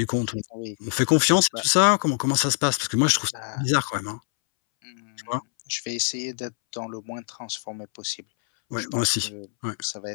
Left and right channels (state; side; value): silent; right; 62 dB below the other